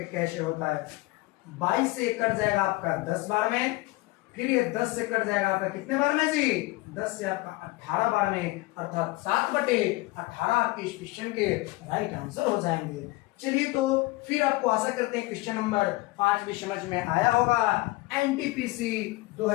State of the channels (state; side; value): quieter; right; 21.4 dB